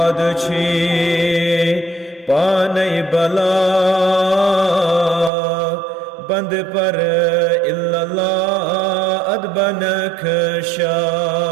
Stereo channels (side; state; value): left; drops out; at 5.3 s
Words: छी पानई बला बंद पर इल्ला अदबन खशा